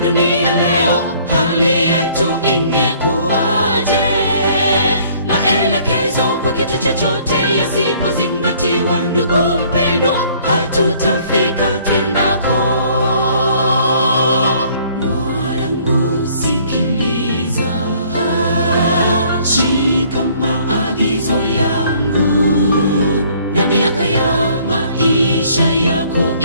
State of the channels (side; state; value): both; inverted; correlation -0.59